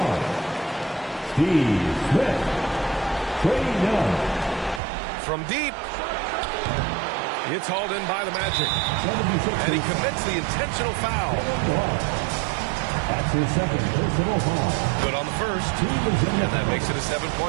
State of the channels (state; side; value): drops out; left; at 4.8 s